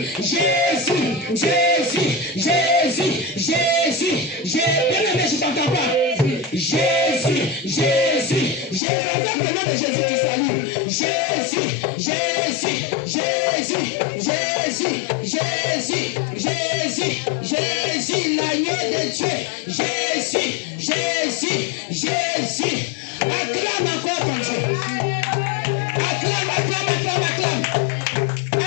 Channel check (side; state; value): right; drops out; at 8.8 s